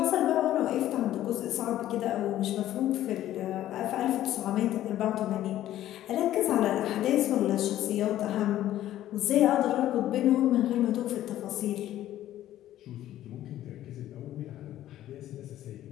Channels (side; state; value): right; quieter; 13.1 dB